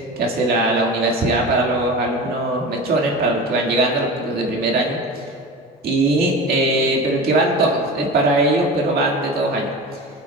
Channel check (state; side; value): normal; both; correlation 0.31